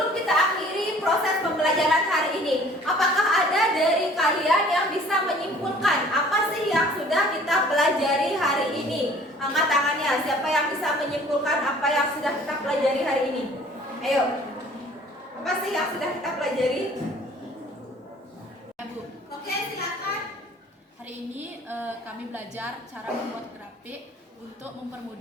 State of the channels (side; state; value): both; normal; correlation 0.52